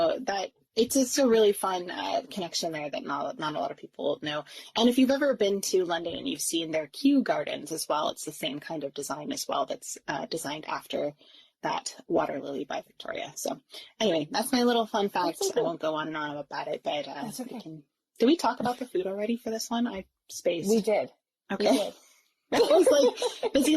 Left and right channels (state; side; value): identical; both; correlation 1.00